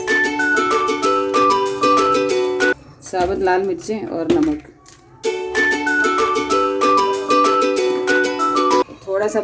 साबुत लाल मिर्चें और नमक। थोड़ा सा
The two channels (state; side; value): identical; both; correlation 1.00